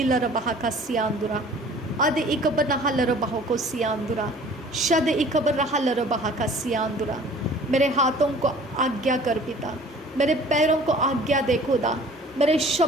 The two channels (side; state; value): both; normal; correlation 0.49